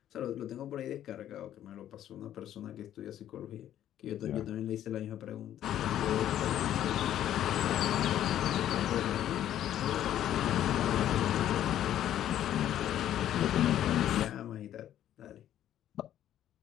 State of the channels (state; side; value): quieter; right; 11.5 dB